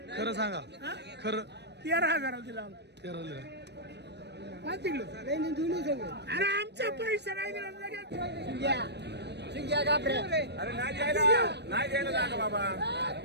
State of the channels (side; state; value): left; late; 0.50 ms